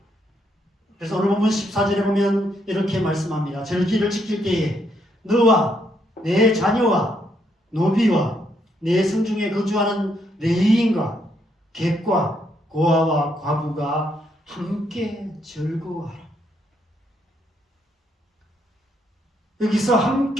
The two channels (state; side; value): normal; both; correlation 0.74